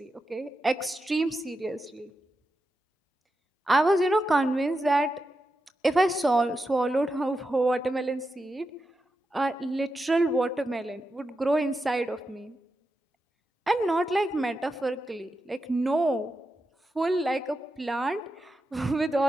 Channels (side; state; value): both; normal; correlation 0.88